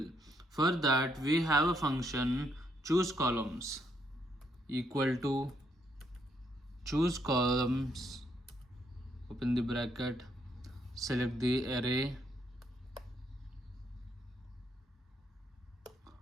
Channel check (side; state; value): both; normal; correlation 0.73